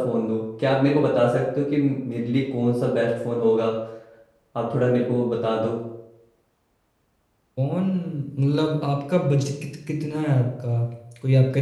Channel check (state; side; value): identical; both; correlation 1.00